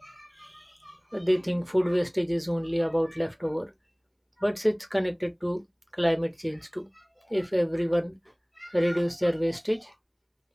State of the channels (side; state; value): both; identical; correlation 1.00